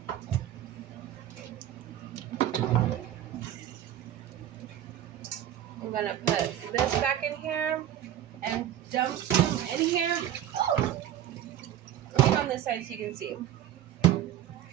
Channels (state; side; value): quieter; left; 11.4 dB